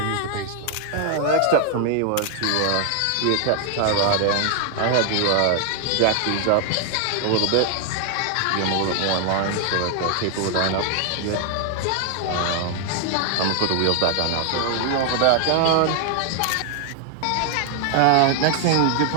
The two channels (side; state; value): both; different; correlation 0.00